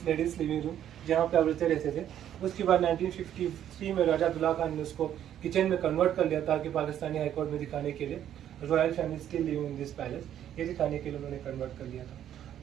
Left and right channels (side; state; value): left; quieter; 10.7 dB